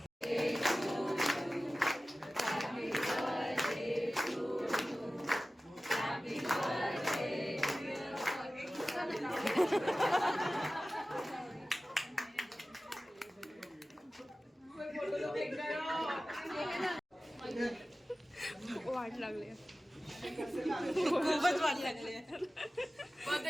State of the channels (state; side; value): normal; both; correlation 0.96